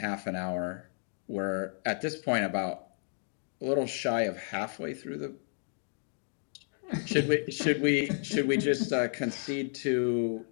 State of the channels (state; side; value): silent; right; 56 dB below the other